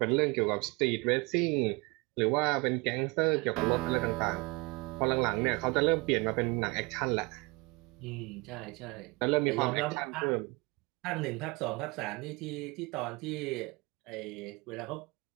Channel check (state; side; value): quieter; left; 26.3 dB